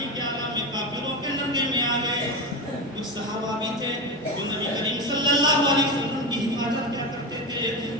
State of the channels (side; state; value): both; normal; correlation 0.19